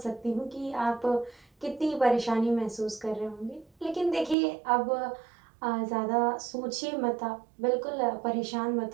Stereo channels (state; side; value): drops out; left; at 4.4 s